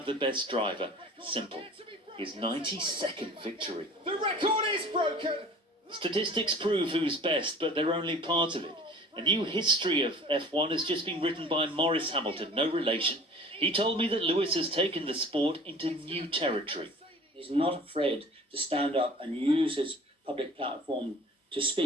the best driver. Simple. His 92nd victory. The record is broken. Statistics prove who's best, but they're only part of it. A new history of F1 has just been written by Maurice Hamilton, no relation. He told me that Lewis has taken the sport into new territory. He's not afraid to stand up and use his public platform to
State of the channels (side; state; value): both; normal; correlation 0.44